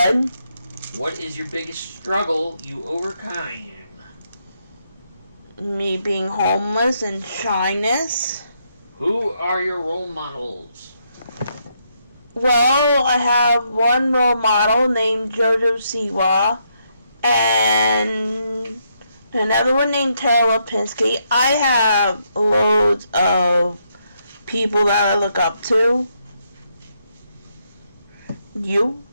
What is your biggest struggle you overcame? Me being homeless and shyness. Who are your role models? Well, I have one role model named Jojo Siwa and another one named Tara Lipinski. I have loads of people that I look up to. You?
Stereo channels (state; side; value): inverted; both; correlation -0.77